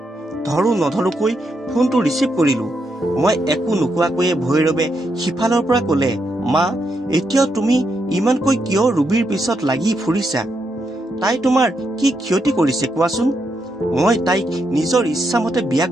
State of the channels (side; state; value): both; normal; correlation 0.81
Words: ধৰো নধৰোকৈ ফোনটো ৰিচিভ কৰিলো। মই একো নোকোৱাকৈয়ে ভৈৰৱে সিফালৰ পৰা ক'লে, মা, এতিয়াও তুমি ইমানকৈ কিয় ৰুবিৰ পিছত লাগি ফুৰিছা? তাই তোমাৰ কি ক্ষতি কৰিছে কোৱাচোন? মই তাইক নিজৰ ইচ্ছামতে বিয়া